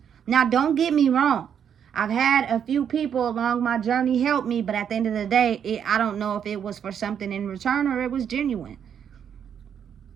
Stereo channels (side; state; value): left; quieter; 8.3 dB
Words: Now, don't get me wrong. I've had a few people along my journey help me, but at the end of the day, I don't know if it was for something in return or it was genuine.